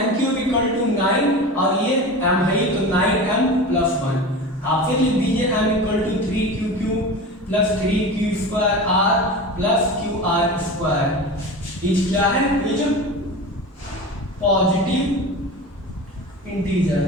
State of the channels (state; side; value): normal; both; correlation 0.30